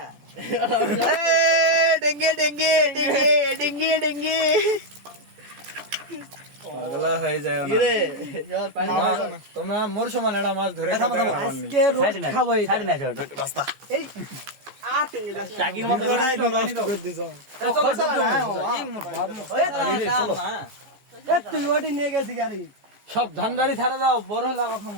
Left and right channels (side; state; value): left; late; 14 ms